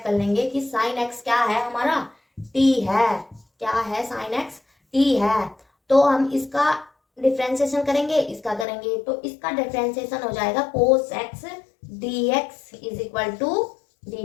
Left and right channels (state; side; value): drops out; right; at 8.7 s